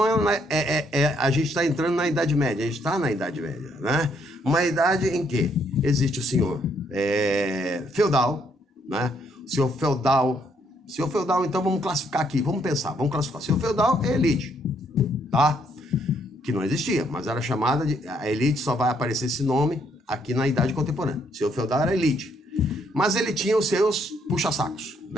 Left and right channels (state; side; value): normal; both; correlation 0.71